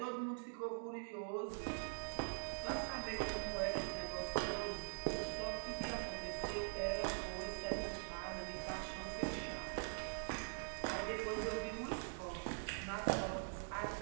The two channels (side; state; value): left; silent; digital silence